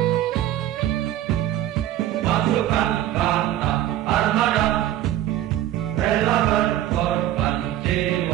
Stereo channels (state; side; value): quieter; left; 12.8 dB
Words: Pasukan kata armada rela berkorban